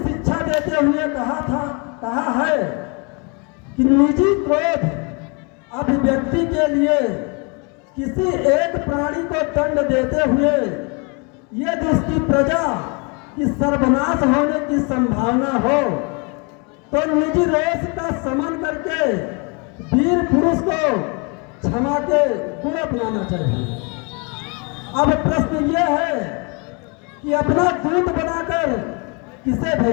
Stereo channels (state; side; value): quieter; right; 32.6 dB